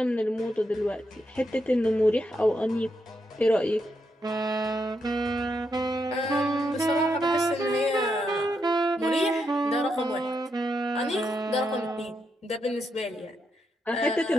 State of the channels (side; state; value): both; normal; correlation 0.81